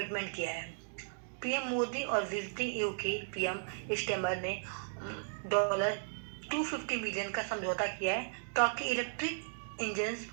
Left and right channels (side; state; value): left; silent; digital silence